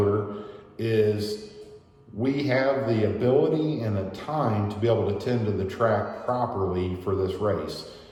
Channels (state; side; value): identical; both; correlation 1.00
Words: is we have the ability and the time to be able to tend to the track properly for this race.